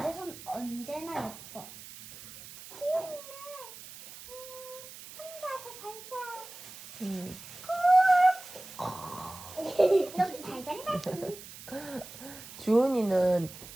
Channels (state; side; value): noise; right; hiss, 15 dB below the sound